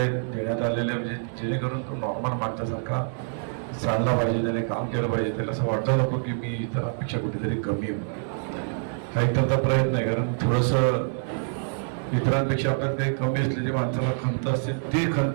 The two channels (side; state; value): left; silent; digital silence